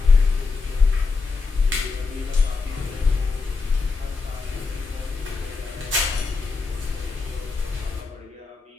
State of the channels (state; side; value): quieter; right; 4.4 dB